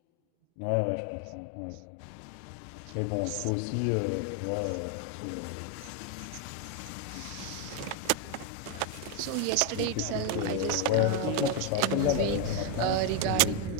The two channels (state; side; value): different; both; correlation 0.01